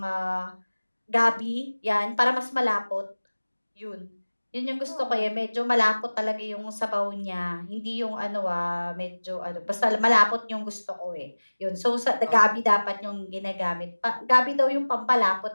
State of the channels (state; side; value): inverted; both; correlation -1.00